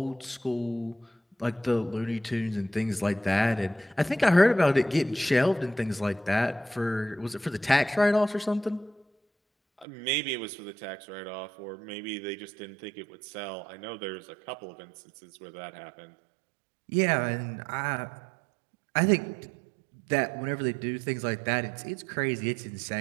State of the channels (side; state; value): left; drops out; at 9.9 s